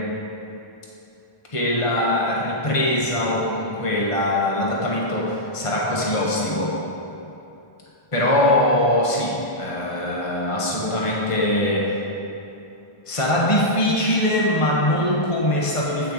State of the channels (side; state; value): right; late; 1.5 ms